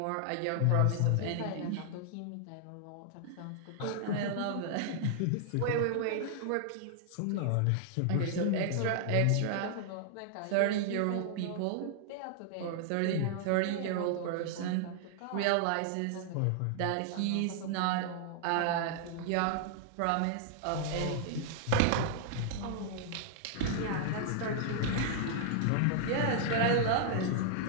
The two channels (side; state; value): both; different; correlation -0.01